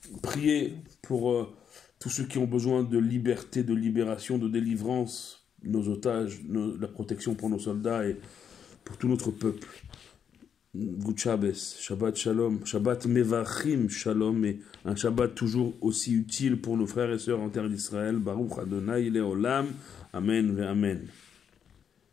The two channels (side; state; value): right; quieter; 7.8 dB